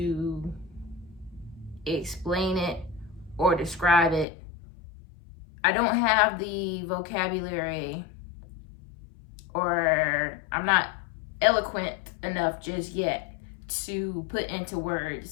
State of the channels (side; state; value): right; drops out; at 4.2 s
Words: explain it or describe it. I don't have the vocabulary, or I'm not eloquent enough just yet to put into